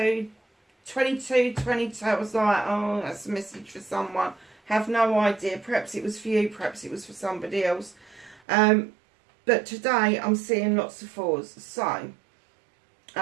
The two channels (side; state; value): left; drops out; at 8.4 s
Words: 22, 22. I was like, oh, that's a message for someone. Have no idea. Perhaps it was for you. Perhaps it was for somebody else. But today I'm seeing lots of 4s. So,